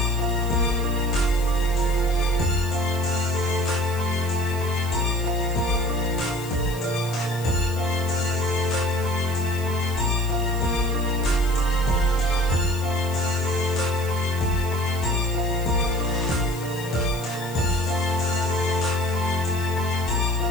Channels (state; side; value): noise; left; hiss, 16 dB below the sound